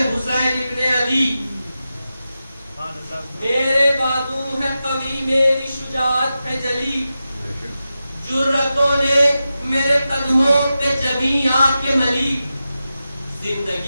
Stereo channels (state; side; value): inverted; both; correlation -0.92